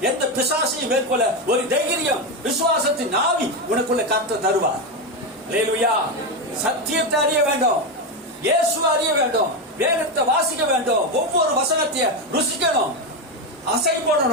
எந்த பிசாசையும் மேற்கொள்ள ஒரு தைரியம், விசுவாசத்தின் ஆவி உனக்குள்ள கர்த்தர் தருவார். அல்லேலூயா. சத்தியத்தை அறிய வேண்டும், இயேசு அறிய வேண்டும், வேதத்தை வாசிக்க வேண்டும், ஒவ்வொரு வசனத்தையும் ருசிக்கணும், அசை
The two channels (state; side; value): normal; both; correlation 0.12